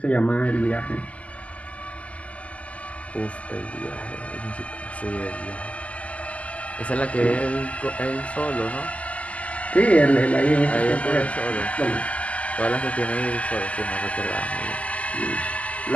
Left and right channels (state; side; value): late; right; 0.064 ms